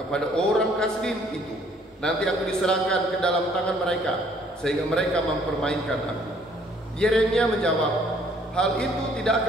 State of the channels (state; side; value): normal; both; correlation 0.61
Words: orang Kasdim itu. Nanti aku diserahkan ke dalam tangan mereka, sehingga mereka mempermainkan aku." Yeremia menjawab, "Hal itu tidak